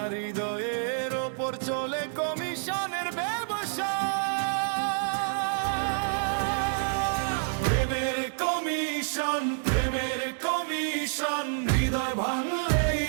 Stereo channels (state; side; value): silent; left; digital silence